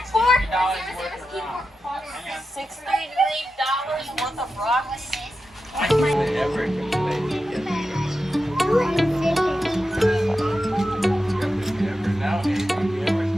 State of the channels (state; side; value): normal; both; correlation 0.91